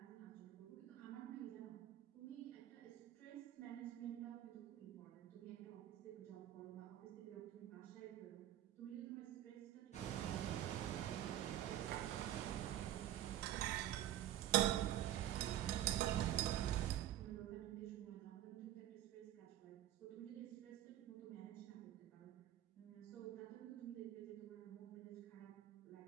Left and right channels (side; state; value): left; quieter; 12.7 dB